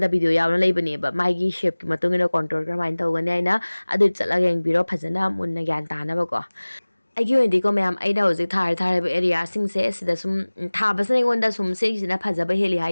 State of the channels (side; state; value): both; inverted; correlation -1.00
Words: da video yawna leibani ba mai gi shape ki matungina contour karamaina tawgani aina adu chalaga yengbiro phajana munna gyan tana ba ko aigi ondi ko mayam aina hoji thar area sing se sida sum thabasna ngonda sum se sina phajaba heli